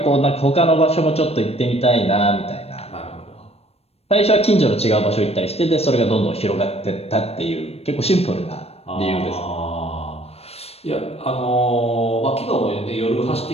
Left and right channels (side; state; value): right; late; 0.29 ms